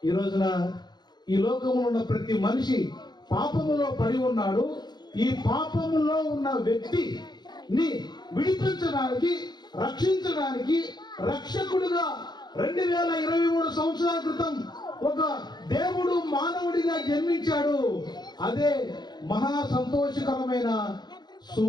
ఈ రోజున ఈ లోకంలో ఉన్న ప్రతి మనిషి పాపములో పడి ఉన్నాడు. ఈ పాపములో ఉన్న వ్యక్తిని విడిపించడానికి, రక్షించడానికి రక్షకుడుగా 2023 సంవత్సరాల క్రితం ఒక దేవుడు మానవుడిగా జన్మించాడు. అదే మహా సంతోషకరమైన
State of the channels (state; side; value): late; right; 0.21 ms